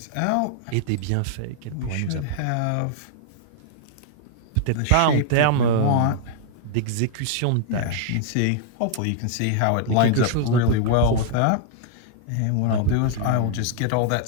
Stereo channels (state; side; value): different; both; correlation -0.01